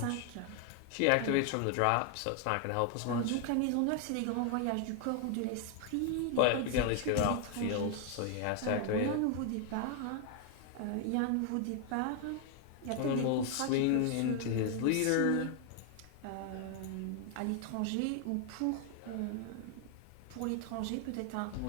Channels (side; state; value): both; different; correlation 0.00